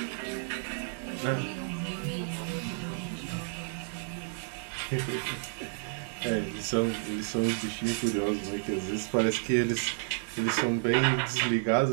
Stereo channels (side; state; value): left; silent; digital silence